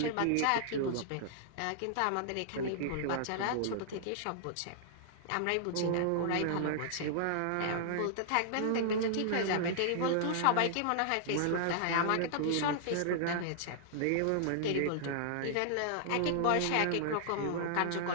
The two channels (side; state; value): both; different; correlation -0.01